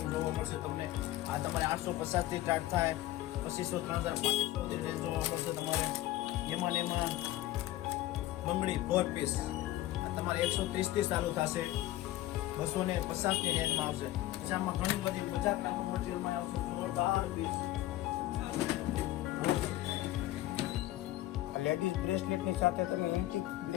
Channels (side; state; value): right; quieter; 15.4 dB